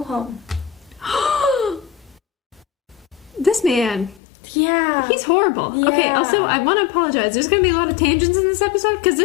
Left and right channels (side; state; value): right; drops out; at 4.2 s